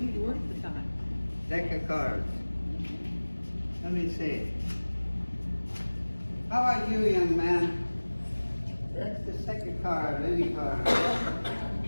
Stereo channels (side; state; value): both; inverted; correlation -1.00